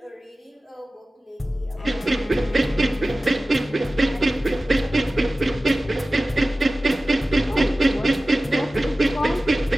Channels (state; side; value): normal; both; correlation 0.96